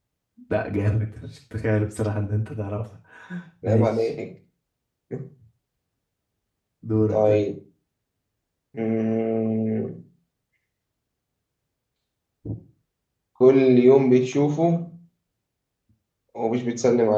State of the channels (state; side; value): identical; both; correlation 1.00